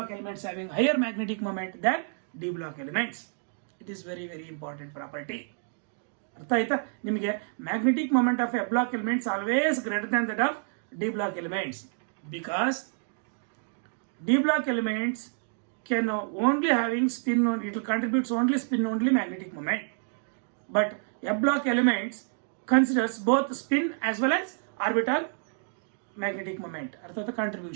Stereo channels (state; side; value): silent; left; 58 dB below the other